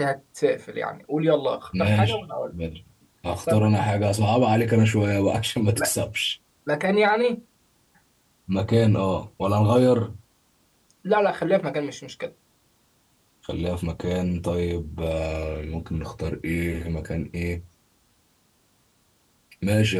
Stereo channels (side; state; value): both; identical; correlation 1.00